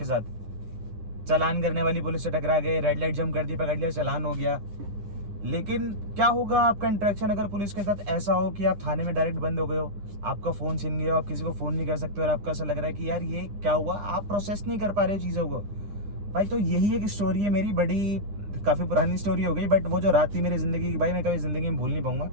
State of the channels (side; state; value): left; late; 9.9 ms